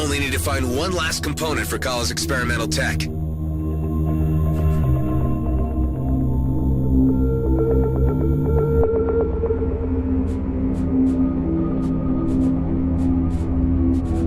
need to find one last component for Kala's experimental tech.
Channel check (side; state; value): both; identical; correlation 1.00